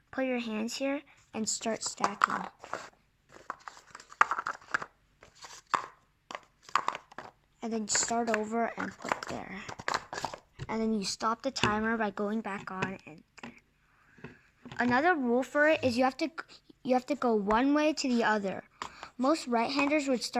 put your hands here and start stacking. And then start over and put there. And then you stop the timer by going back on and there. Another rule for it is you have to go one way to the other. Most right-handers would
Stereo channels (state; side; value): identical; both; correlation 1.00